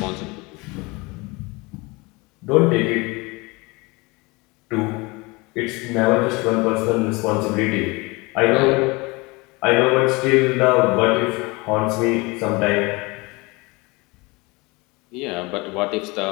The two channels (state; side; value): quieter; right; 25.4 dB